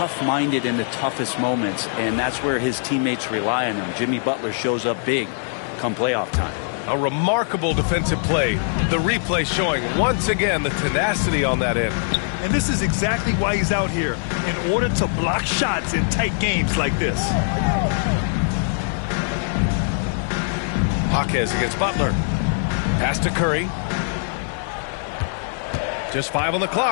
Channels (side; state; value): right; silent; digital silence